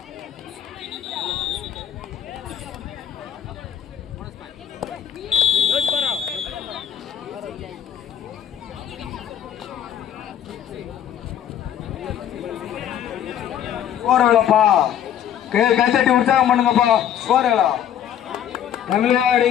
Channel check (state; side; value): quieter; right; 10.0 dB